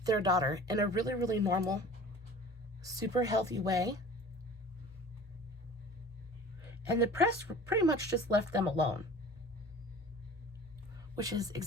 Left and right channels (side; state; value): both; normal; correlation 0.43